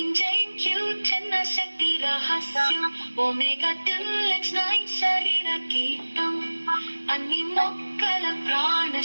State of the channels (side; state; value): both; inverted; correlation -1.00